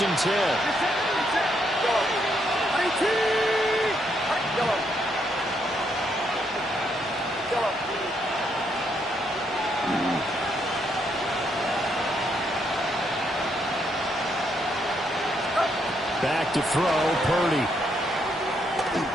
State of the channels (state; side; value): normal; both; correlation 0.75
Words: and 10. Back to throw, Purdy.